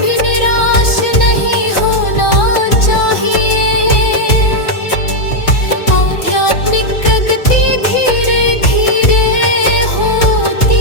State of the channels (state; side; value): late; right; 3.5 ms